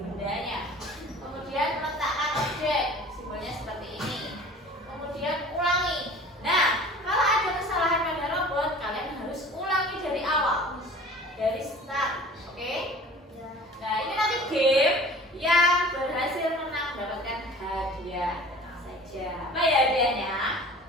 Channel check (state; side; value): normal; both; correlation 0.44